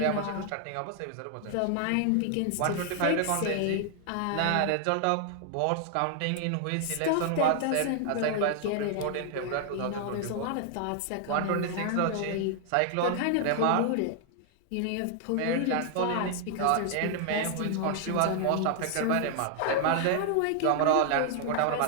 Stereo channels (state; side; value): different; both; correlation 0.00